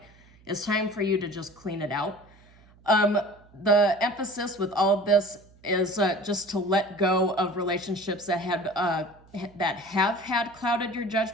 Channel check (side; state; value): right; noise; hum, 27 dB below the sound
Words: it's time for you to just clean it out. The emphasis with all of this is just to let go of relationships that have had clouded your